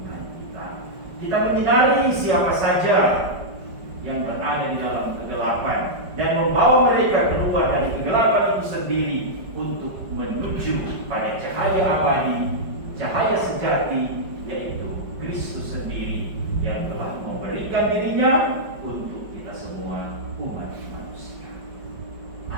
kita. Kita menyinari siapa saja yang berada di dalam kegelapan dan membawa mereka keluar dari kegelapan itu sendiri untuk menuju pada cahaya abadi, cahaya sejati, yaitu Kristus sendiri yang telah memberikan dirinya untuk kita semua umat manusia.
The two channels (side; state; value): left; late; 5.2 ms